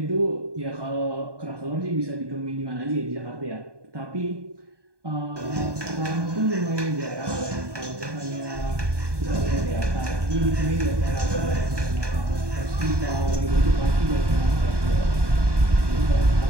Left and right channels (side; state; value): left; late; 1.2 ms